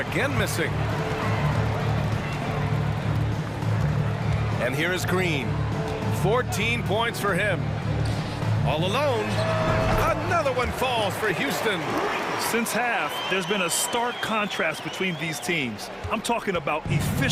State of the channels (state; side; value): identical; both; correlation 1.00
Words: missing. And here is Green. 14 points for him. All alone. Another one falls for Houston. Since half, there's been a stark contrast between these teams. I'm talking about